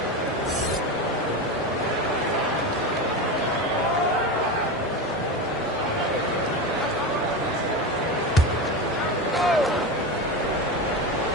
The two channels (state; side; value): normal; both; correlation 0.21